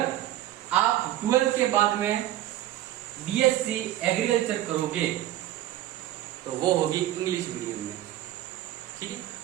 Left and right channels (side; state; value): left; quieter; 13.7 dB